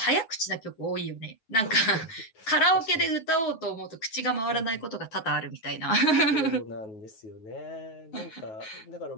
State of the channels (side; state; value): right; late; 9.2 ms